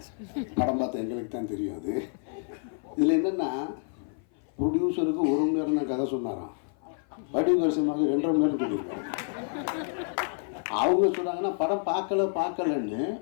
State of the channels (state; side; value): silent; right; 55 dB below the other